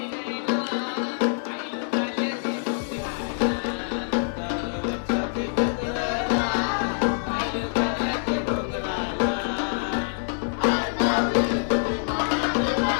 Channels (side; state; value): right; silent; 61 dB below the other